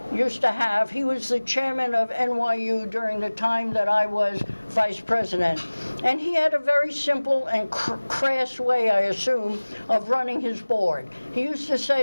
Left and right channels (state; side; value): inverted; both; correlation -1.00